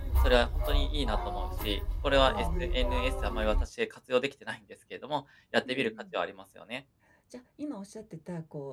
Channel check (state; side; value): identical; both; correlation 1.00